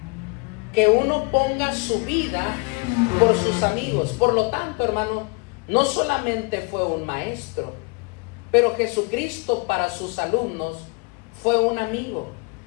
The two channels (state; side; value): quieter; right; 32.3 dB